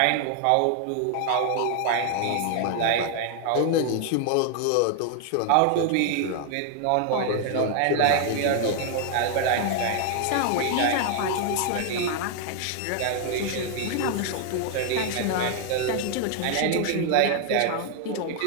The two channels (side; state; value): both; different; correlation 0.00